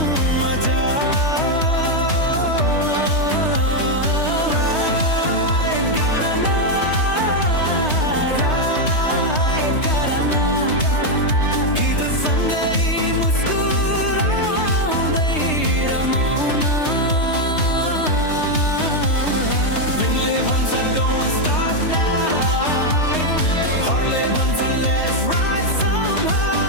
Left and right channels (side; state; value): right; late; 3.2 ms